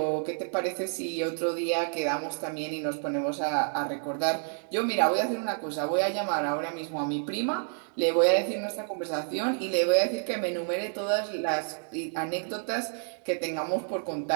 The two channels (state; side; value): silent; left; 58 dB below the other